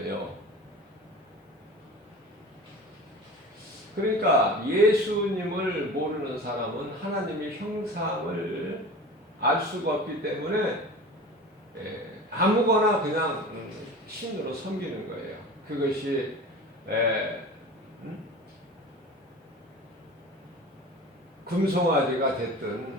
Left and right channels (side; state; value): both; normal; correlation 0.36